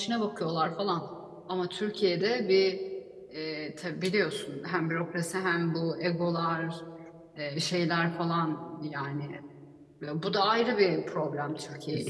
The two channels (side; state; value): both; identical; correlation 1.00